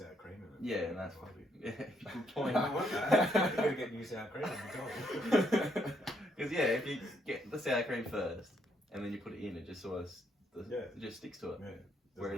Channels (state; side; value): normal; both; correlation 0.73